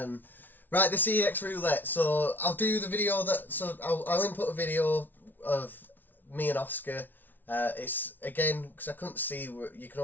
Right, the CEX Roulette. So I'll do the video I'll input a video of me and Oscar. It's again, because I couldn't see, you can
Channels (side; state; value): right; late; 0.086 ms